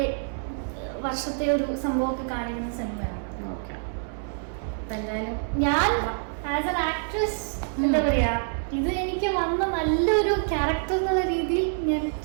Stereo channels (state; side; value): silent; left; 61 dB below the other